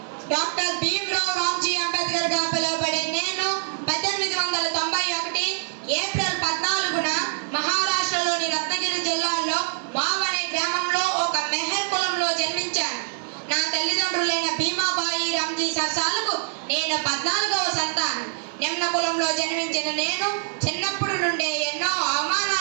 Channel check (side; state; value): left; silent; digital silence